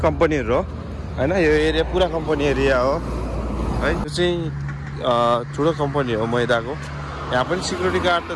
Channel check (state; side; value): identical; both; correlation 1.00